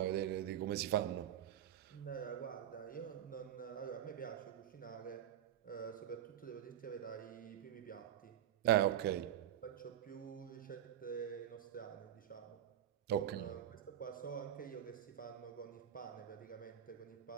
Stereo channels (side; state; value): left; quieter; 10.8 dB